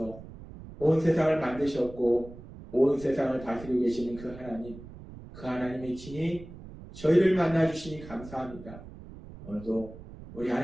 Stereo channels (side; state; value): right; noise; rumble, 16 dB below the sound